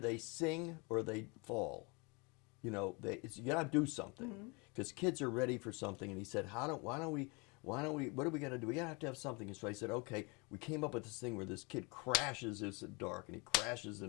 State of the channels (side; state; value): right; quieter; 29.9 dB